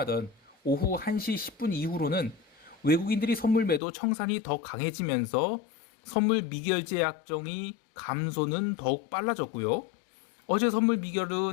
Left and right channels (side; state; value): right; drops out; at 3.8 s